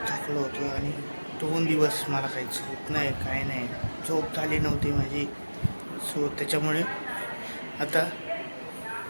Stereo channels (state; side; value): inverted; both; correlation -1.00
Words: थकलो होतो आणि 2 दिवस मला काही झोप नाही, काय नाही, झोप झाली नव्हती माझी. सो त्याच्यामुळे आता